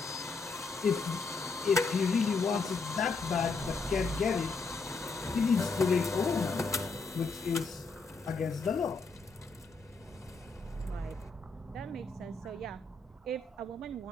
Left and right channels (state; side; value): quieter; right; 4.1 dB